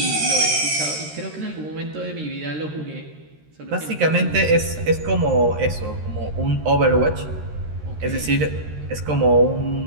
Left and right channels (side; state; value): left; late; 13 ms